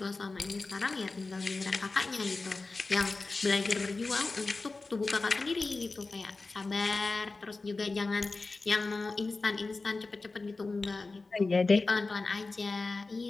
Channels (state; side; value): quieter; right; 3.6 dB